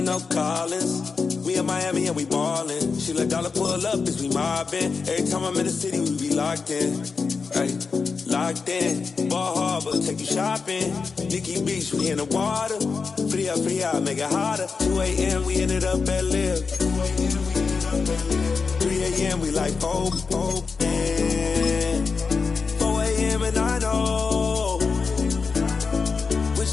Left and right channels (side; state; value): right; quieter; 4.9 dB